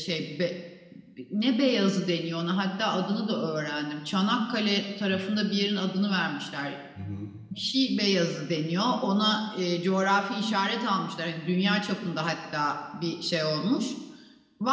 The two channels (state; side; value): identical; both; correlation 1.00